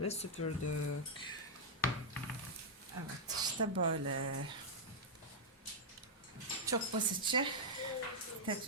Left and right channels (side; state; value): both; normal; correlation -0.04